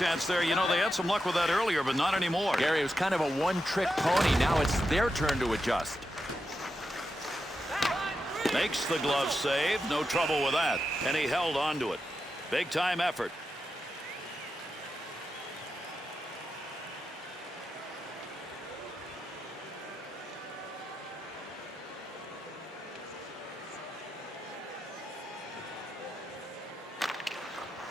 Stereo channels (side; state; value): both; normal; correlation 0.88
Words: there. You know, they had some luck with that earlier, but not anymore. Gary, it was kind of a one-trick pony. Now it's their turn to adjust. Makes the glove save. No trouble with that. And he held on to it. Big-time effort.